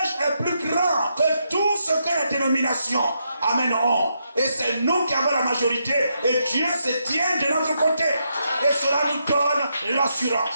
est plus grand que tout ce que les dénominations, amen, ont. Et c'est nous qui avons la majorité et Dieu se tient de notre côté. Et cela nous donne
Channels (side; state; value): both; inverted; correlation -0.81